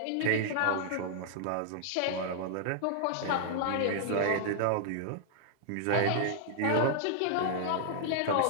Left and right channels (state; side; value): different; both; correlation -0.01